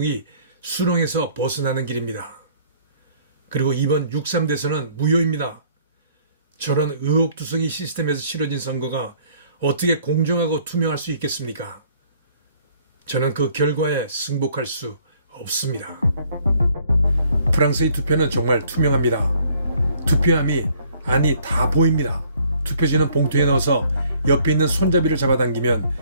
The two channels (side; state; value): both; inverted; correlation -0.61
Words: 수렁에서 벗어나는 길입니다. 그리고 이번 6.3 대선은 무효입니다. 저런 의혹투성이 시스템에서 치러진 선거가 어떻게 공정하고 투명할 수 있겠습니까? 저는 그 결과에 승복할 수 없습니다. 프랑스의 투표는 정말 투명합니다. 투표함이 다 보입니다. 투표지는 봉투에 넣어서 옆에 있는 손잡이를 잡아당기면